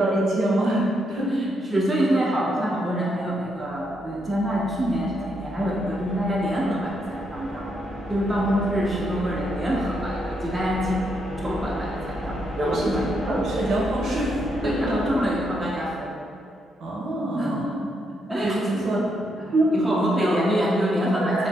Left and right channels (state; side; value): normal; both; correlation 0.78